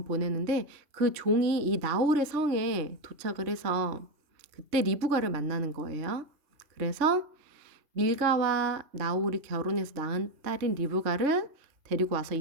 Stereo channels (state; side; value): late; left; 3.5 ms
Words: 보내는데 그 종이 이 나홀의 성에 도착을 해서 그때 리브가를 만나는 거예요. 그래서 밀가와 나홀이 결혼해서 낳은 딸인 리브가를 데리고 와서